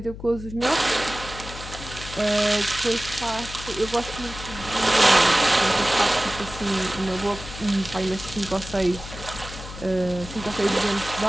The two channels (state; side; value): noise; left; hum, 12 dB below the sound